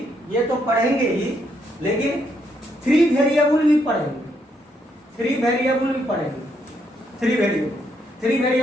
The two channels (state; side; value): normal; both; correlation 0.75